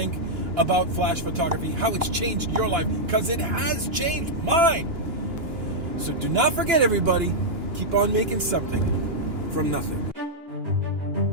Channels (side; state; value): left; late; 2.9 ms